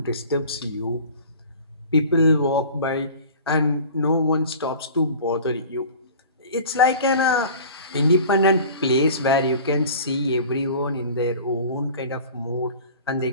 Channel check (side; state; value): both; inverted; correlation -0.41